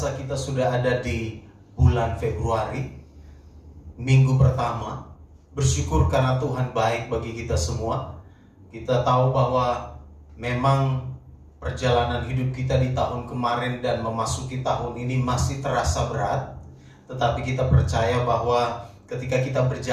kita sudah ada di bulan Februari, minggu pertama. Bersyukur karena Tuhan baik bagi kita semua. Kita tahu bahwa memang perjalanan hidup kita di tahun kemarin dan memasuki tahun ini masih terasa berat. Tetapi kita percaya bahwa ketika kita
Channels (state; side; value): identical; both; correlation 1.00